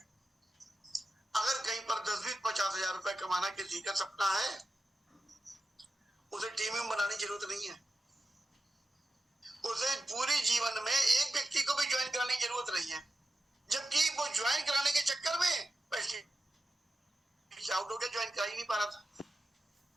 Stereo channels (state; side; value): normal; both; correlation 0.91